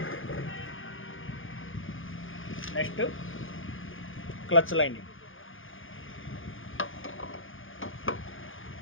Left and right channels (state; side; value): late; right; 0.58 ms